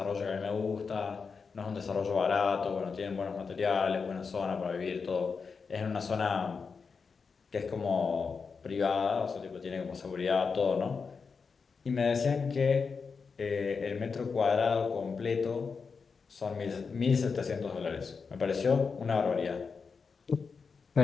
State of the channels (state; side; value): quieter; right; 5.2 dB